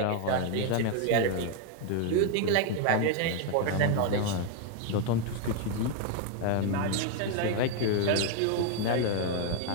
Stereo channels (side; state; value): both; different; correlation 0.01